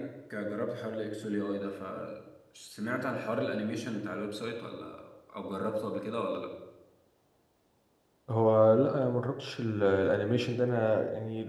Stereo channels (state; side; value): identical; both; correlation 1.00